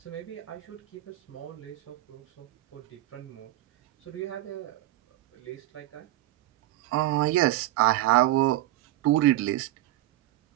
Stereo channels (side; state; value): left; quieter; 15.6 dB